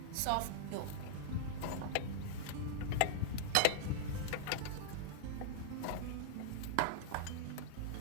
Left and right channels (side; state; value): both; different; correlation -0.01